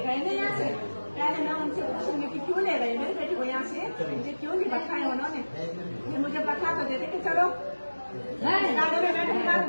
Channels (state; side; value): inverted; both; correlation -1.00